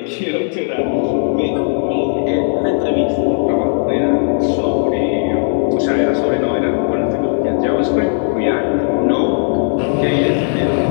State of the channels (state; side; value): silent; right; 64 dB below the other